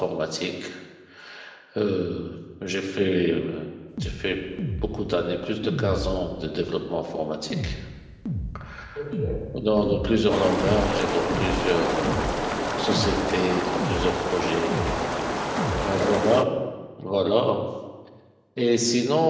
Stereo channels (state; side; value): identical; both; correlation 1.00